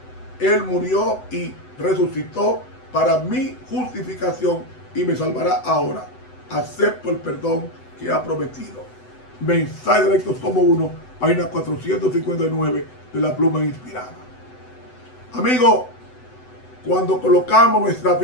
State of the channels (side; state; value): right; late; 8.0 ms